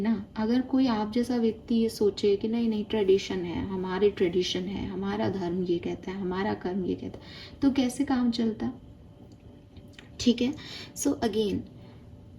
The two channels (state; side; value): identical; both; correlation 1.00